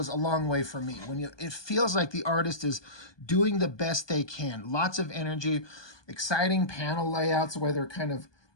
a long way for me. It feels like the artist is doing the best they can. Lots of energy, exciting panel layouts where they're kind of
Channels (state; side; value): late; right; 1.2 ms